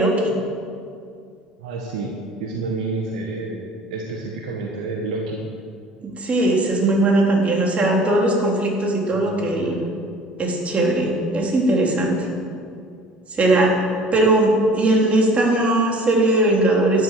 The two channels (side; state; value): both; normal; correlation 0.48